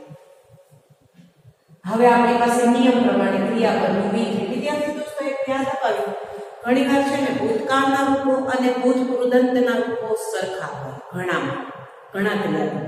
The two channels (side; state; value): both; identical; correlation 1.00